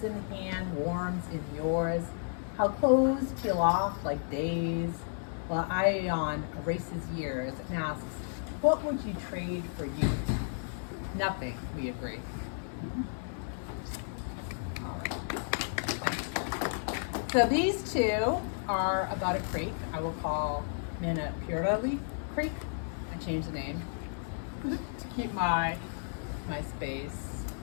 hand warms in yours, how clothes peel off like days, while Ion erases years and asks, what would you trade for youth? Nothing, we agree. All right. So these two are about a creek I will call Manapurali Creek. I changed the name to keep my space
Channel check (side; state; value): right; silent; digital silence